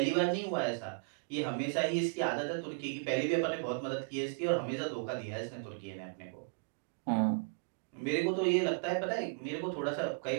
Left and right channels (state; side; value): quieter; left; 37.3 dB